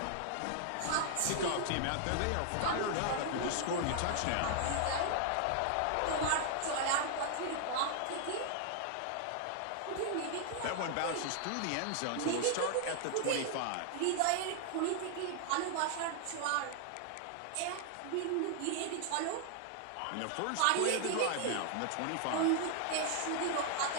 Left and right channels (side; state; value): both; different; correlation 0.00